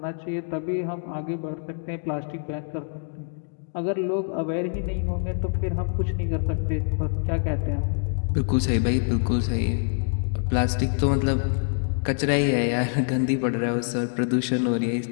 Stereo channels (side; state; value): right; silent; 61 dB below the other